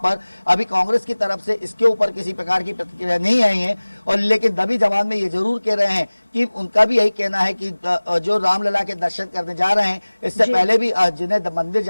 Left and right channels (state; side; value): inverted; both; correlation -1.00